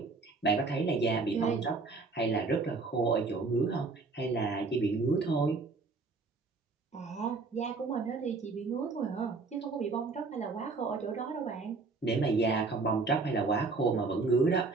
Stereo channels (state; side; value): quieter; left; 4.0 dB